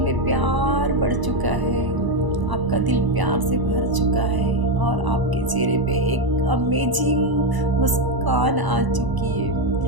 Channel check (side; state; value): left; late; 1.0 ms